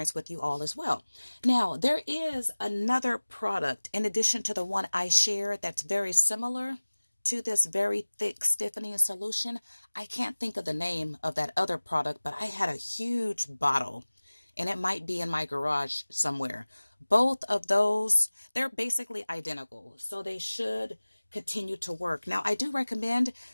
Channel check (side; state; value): both; inverted; correlation -1.00